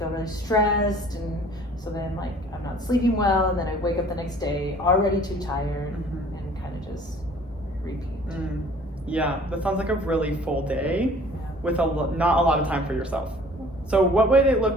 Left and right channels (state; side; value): normal; both; correlation 0.51